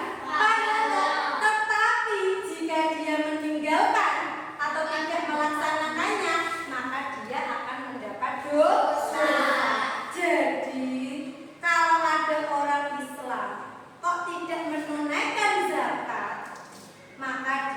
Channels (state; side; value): identical; both; correlation 1.00